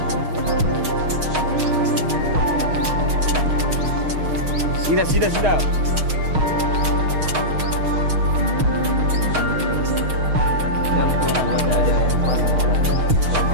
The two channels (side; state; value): left; late; 6.5 ms